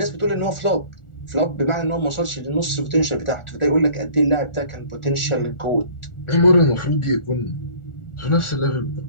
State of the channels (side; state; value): right; late; 1.4 ms